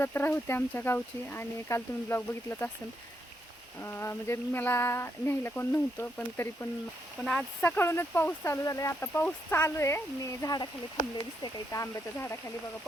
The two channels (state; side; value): normal; both; correlation 0.79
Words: होती आमच्या गावची आणि काल तुम्ही ब्लॉग बघितलाच असेल. म्हणजे मला न्यायला कोण नव्हतं, पण तरी पण आज सकाळूनच पाऊस चालू झाला आहे. आता पाऊस चालू आहे. मी झाडाखाली थांबले, दिसते का इथं आंब्याच्या झाडाखाली. बघा